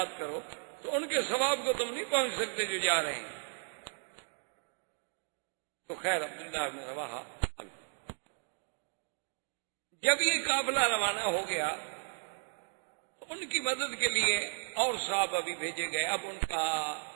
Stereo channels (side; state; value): left; silent; 55 dB below the other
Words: کرو تو ان کے ثواب کو تم نہیں پہنچ سکتے جو جا رہے ہیں۔ تو خیر عبداللہ بن رواحہ جب یہ قافلہ روانہ ہو گیا تو ان کی مدد کے لیے اور صحابہ بھی بھیجے گئے۔ اب ان کا